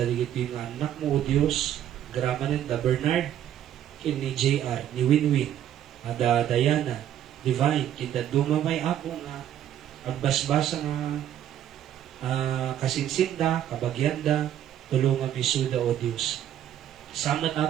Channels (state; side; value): quieter; left; 10.9 dB